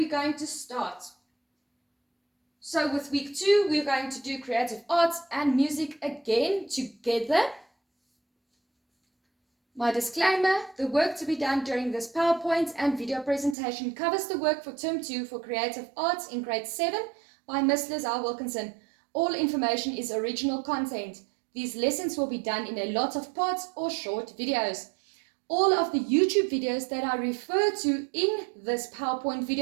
going to start. So with week 2 we're going to do creative arts and music again together. My disclaimer, the work to be done during this PowerPoint and video presentation covers the work for term 2 for creative arts in grade 7 by Miss Lizelle Wilkinson. All information is original content. These lessons will be done in a lot of parts or short videos. All of the YouTube videos that I refer to in this PowerPoint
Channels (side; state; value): left; drops out; at 13.6 s